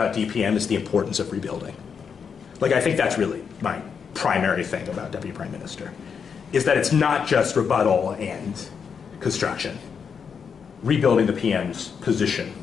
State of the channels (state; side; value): quieter; right; 6.5 dB